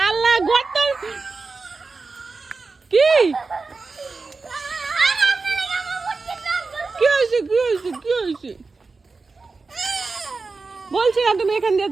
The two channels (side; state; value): left; quieter; 4.1 dB